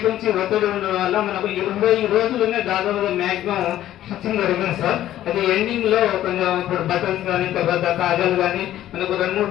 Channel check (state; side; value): quieter; right; 12.9 dB